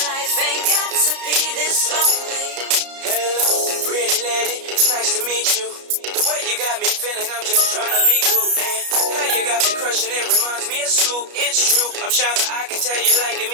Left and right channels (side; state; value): left; late; 33 ms